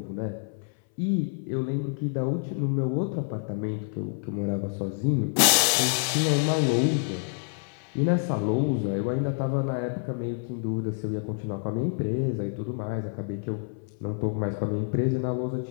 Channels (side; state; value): right; silent; 60 dB below the other